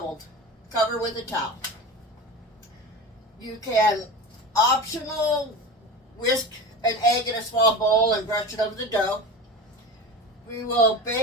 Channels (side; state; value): both; normal; correlation 0.29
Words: Cover with a towel. You can optional whisk an egg in a small bowl and brush it over the dough. We will